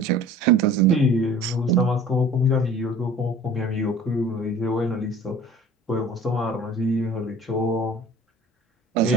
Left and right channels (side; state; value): both; normal; correlation 0.45